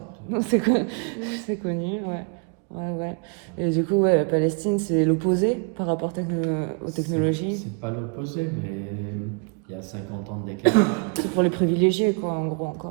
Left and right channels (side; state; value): left; quieter; 34.4 dB